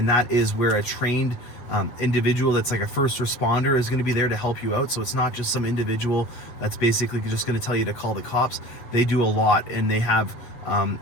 that is where a trained individual that's like a first responder is going to be there to help you out. So it's not just some individual that's basically just going to tell you to call the cops. They do a lot, and they have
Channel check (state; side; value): late; right; 8.6 ms